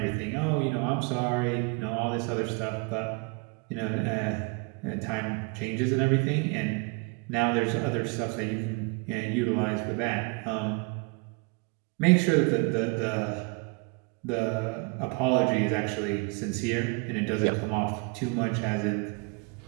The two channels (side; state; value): left; quieter; 31.8 dB